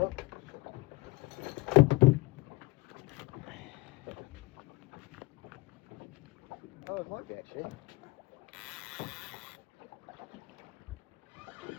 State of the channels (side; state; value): right; quieter; 22.9 dB